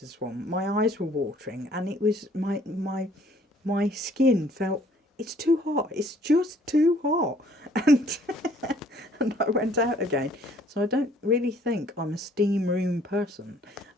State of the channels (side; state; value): both; normal; correlation 0.59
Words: one. My eyes were watering, and it was my skin felt, it's too hot. It's just too hot, and and I went out again. So I don't really think I'm a steam room person.